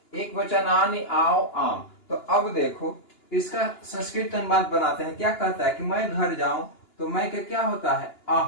एक वचन आनी, आओ, आम। तो अब देखो इसका संस्कृत अनुवाद बनाते हैं। क्या कहता है कि मैं घर जाऊं, तो मैं का क्या होता है?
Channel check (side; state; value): right; late; 2.9 ms